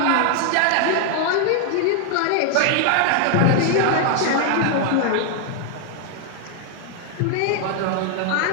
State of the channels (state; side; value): different; both; correlation 0.00